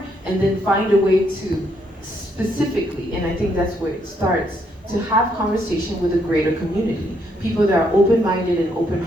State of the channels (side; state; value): both; normal; correlation 0.73